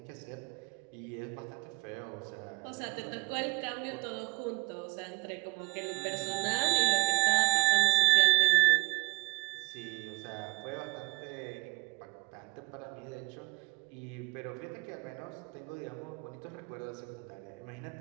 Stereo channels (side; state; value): left; quieter; 25.8 dB